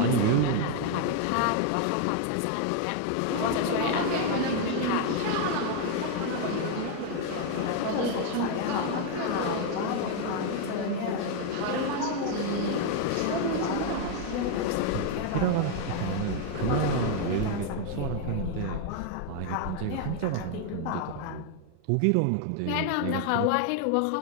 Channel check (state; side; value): different; both; correlation 0.00